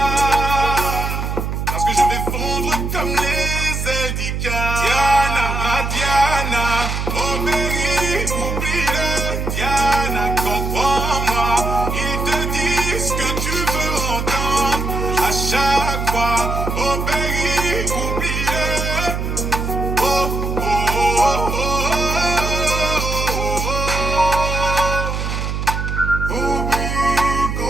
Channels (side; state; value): right; noise; hum, 2 dB below the sound